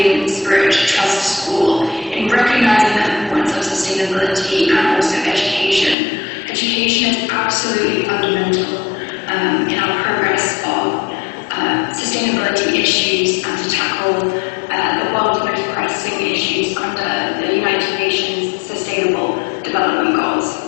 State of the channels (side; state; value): right; drops out; at 6.0 s